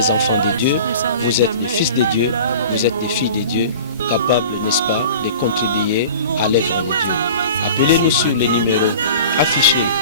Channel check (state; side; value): inverted; both; correlation -0.40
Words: enfants de Dieu, vous êtes des fils de Dieu, vous êtes des filles de Dieu, capables, n'est-ce pas, de contribuer à l'œuvre de Dieu. Appelez-nous sur les numéros affichés